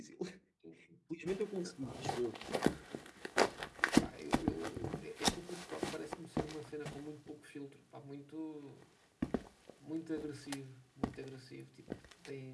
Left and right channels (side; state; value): both; identical; correlation 1.00